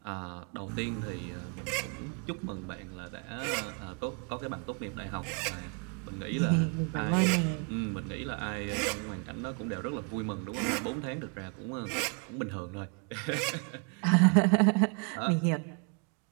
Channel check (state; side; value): quieter; left; 37.0 dB